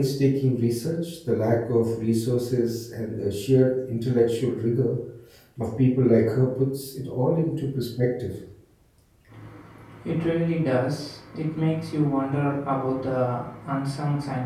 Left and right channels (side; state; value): both; identical; correlation 1.00